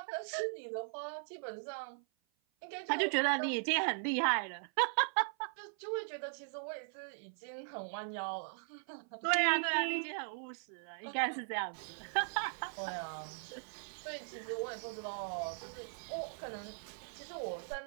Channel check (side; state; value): left; silent; 52 dB below the other